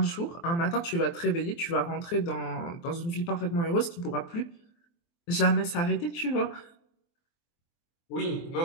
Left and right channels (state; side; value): late; right; 24 ms